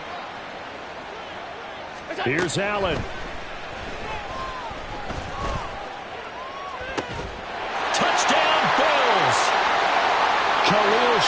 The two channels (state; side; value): identical; both; correlation 1.00